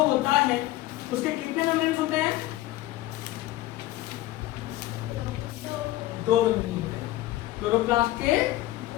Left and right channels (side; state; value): right; quieter; 16.4 dB